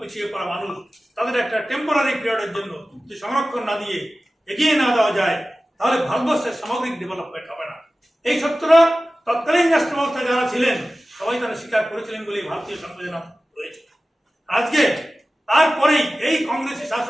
পিছিয়ে পড়া মানুষ তাদের একটা টেম্পোরারি পিরিয়ডের জন্য যদি সংরক্ষণ না দিয়ে এগিয়ে না দেওয়া যায় তাহলে ভারতবর্ষের সামগ্রিক ডেভেলপমেন্ট হবে না। এই সত্যটা তৎকালীন রাষ্ট্র ব্যবস্থায় যারা ছিলেন সবাই তারা স্বীকার করেছিলেন বলে ভারতীয় সংবিধান রয়েছে। আজকে তারপরেই এই কংগ্রেসি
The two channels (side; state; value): both; normal; correlation 0.96